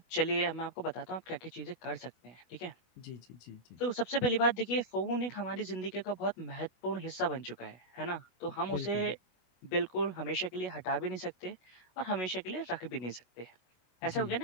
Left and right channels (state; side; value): late; right; 25 ms